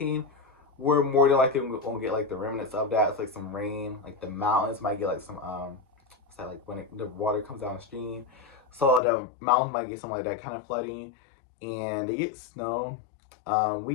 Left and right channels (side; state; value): right; drops out; at 9.0 s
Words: we're more than likely gonna get like the remnants of that. It's like some rain. Like the mountains might get like some what's that, like when the water comes downstream. So the mountains might get some like that kind of flooding, and they get snow.